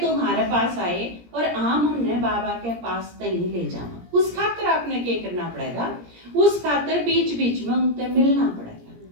हमारे पास आए और हम उन्हें बाबा के पास नहीं ले जाना, उस खातिर आपने क्या करना पड़ेगा, उस खातिर बीच बीच में उनसे मिलना पड़ेगा,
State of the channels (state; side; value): late; left; 17 ms